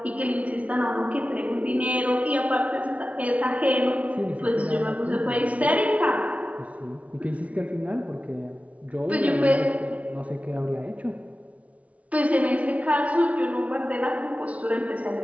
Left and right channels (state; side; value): late; left; 0.067 ms